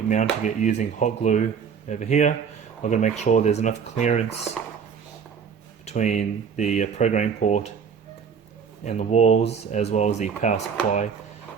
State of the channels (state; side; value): quieter; left; 6.7 dB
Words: mounting it using hot glue over here. I'm going to make sure there's enough clearance between the programming port and the walls, as well as the power supply,